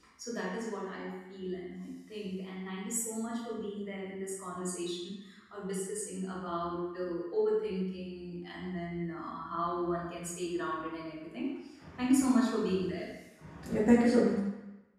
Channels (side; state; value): both; identical; correlation 1.00